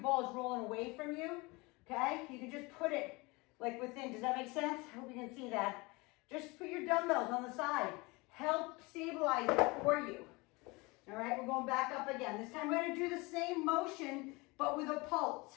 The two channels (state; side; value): quieter; right; 25.1 dB